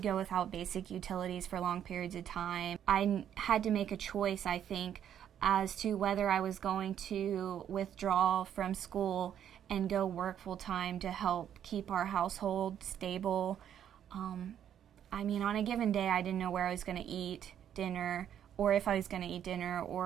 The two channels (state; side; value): quieter; left; 9.7 dB